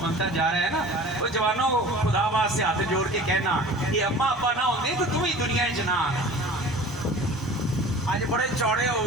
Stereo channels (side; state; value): both; normal; correlation 0.41